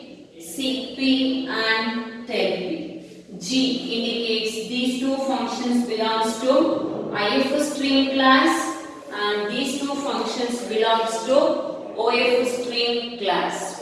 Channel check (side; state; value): both; identical; correlation 1.00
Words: seek P and tell P. G indicates these two functions belongs to IF stream class, and these two functions belongs to OF stream class.